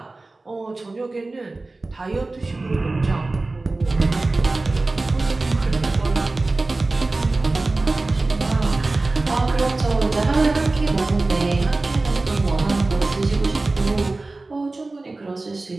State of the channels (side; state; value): left; quieter; 3.2 dB